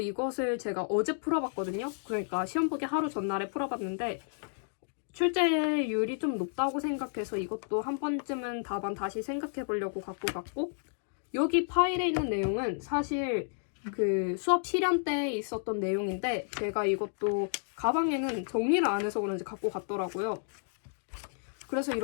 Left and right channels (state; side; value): silent; right; digital silence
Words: 제가 어제 풀어봤거든요. 그러니까 시험 보기 하루 전날에 풀어봤는데 출제율이 좀 높다고 생각해서 이것도 한 번쯤은 답안 다시 생각해 보려고 갖고 갔고, 여기 파일에 있는 내용은 사실 그 수업 실현 때 있었던 내용인데 제가 이것도 가방에는 정리를 안 해서 그런지 갖고 갔더라고요. 그래서